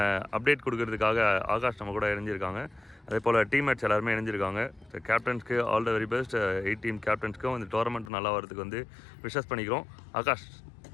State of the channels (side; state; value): right; drops out; at 8.1 s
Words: அப்டேட் கொடுக்கறதுக்காக ஆகாஷ் நம்ம கூட இணைஞ்சிருக்காங்க. அதே போல் டீம்மேட்ஸ் எல்லாருமே இணைஞ்சிருக்காங்க. கேப்டன்ஸ்க்கு all the very best. 8 team கேப்டன்ஸ்க்கும் இந்த டோர்னமெண்ட் நல்லா வரதுக்கு வந்து விஷஸ் பண்ணிக்கிறோம். Akash.